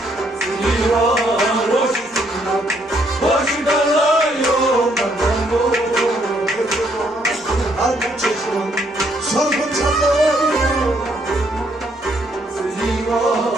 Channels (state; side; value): normal; both; correlation 0.70